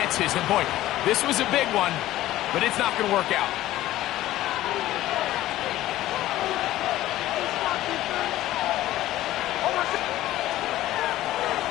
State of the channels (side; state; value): right; quieter; 15.0 dB